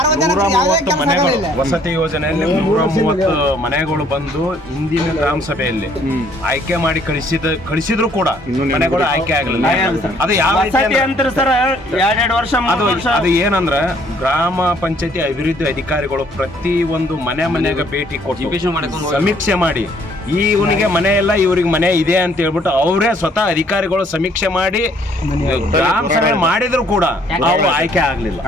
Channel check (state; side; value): normal; both; correlation 0.62